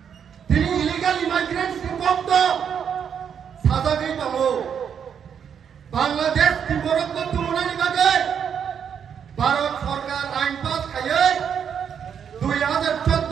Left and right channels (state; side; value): quieter; left; 7.8 dB